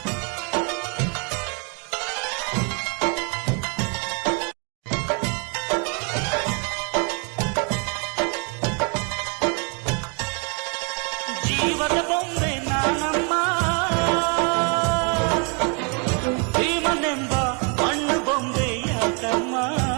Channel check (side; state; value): left; quieter; 36.8 dB